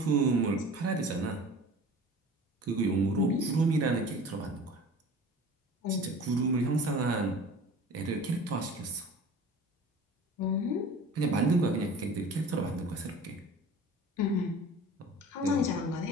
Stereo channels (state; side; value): normal; both; correlation 0.41